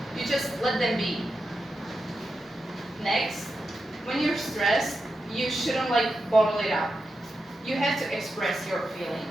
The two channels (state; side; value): normal; both; correlation 0.89